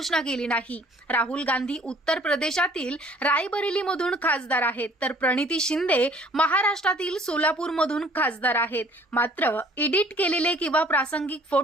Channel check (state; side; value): normal; both; correlation 0.55